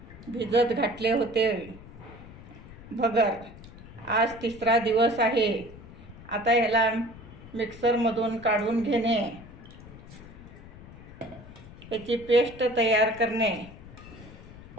भिजत घातले होते भगर। आज 3रा दिवस आहे। आता याला मिक्सरमधून काढून घेणे, याची पेस्ट तयार करणे।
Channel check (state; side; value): noise; left; rumble, 17 dB below the sound